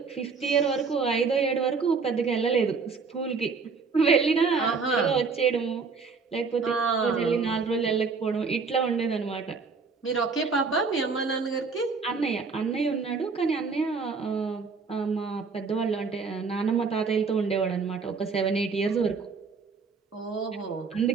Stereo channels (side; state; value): left; quieter; 4.9 dB